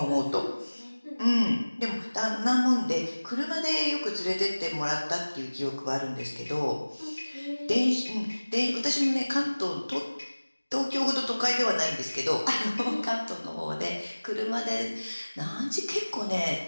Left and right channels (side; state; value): both; inverted; correlation -1.00